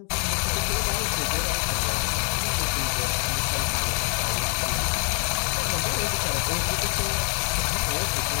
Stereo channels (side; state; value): right; quieter; 38.2 dB